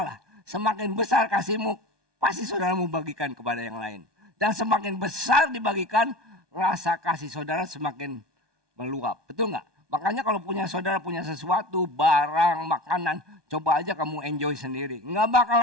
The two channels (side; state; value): left; late; 1.2 ms